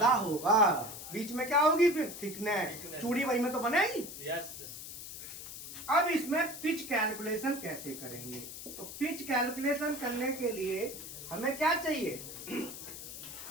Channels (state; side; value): noise; left; hiss, 10 dB below the sound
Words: होगा। बीच में क्या होगी फिर? थिकनेस, चूड़ी वही में तो बनेगी। यस। अब इसमें पिच कैलकुलेशन कैसे करेंगे? तो पिच कैलकुलेशन करने के लिए हमें क्या चाहिए?